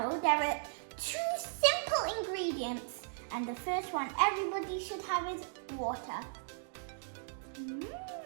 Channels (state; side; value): silent; left; digital silence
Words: there are 2 simple ingredients, and the first one everybody should have is water.